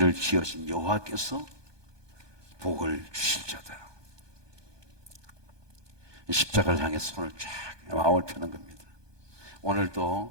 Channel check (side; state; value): left; late; 1.2 ms